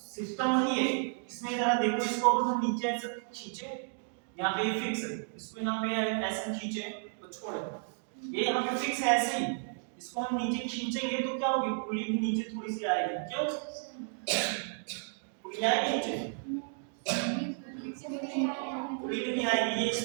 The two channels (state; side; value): silent; left; 56 dB below the other